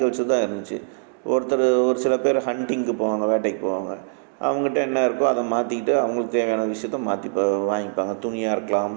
தான் இருந்துச்சு. ஒரு சில பேர் ஹண்டிங்க்கு போவாங்க, வேட்டைக்கு போவாங்க. அவங்ககிட்ட என்ன இருக்கோ அதை மாற்றிக்கிட்டு அவங்களுக்கு தேவையான விஷயத்த மாற்றி வாங்கிப்பாங்க. துணியாக இருக்கலாம்,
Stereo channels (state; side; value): silent; left; digital silence